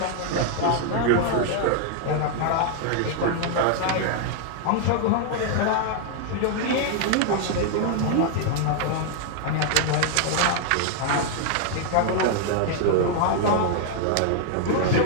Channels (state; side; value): different; both; correlation 0.00